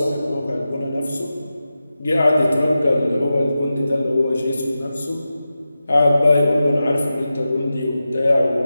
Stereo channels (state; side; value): inverted; both; correlation -0.93